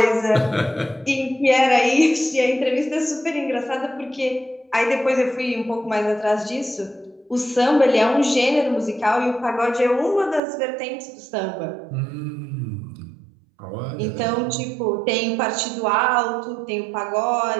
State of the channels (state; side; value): drops out; left; at 10.4 s